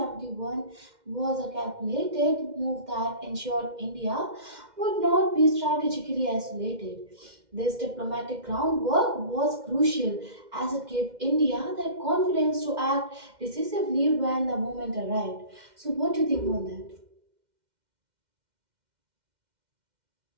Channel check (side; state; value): left; late; 2.1 ms